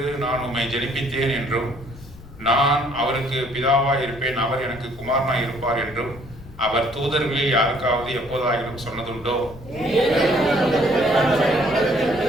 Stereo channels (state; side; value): noise; left; rumble, 18 dB below the sound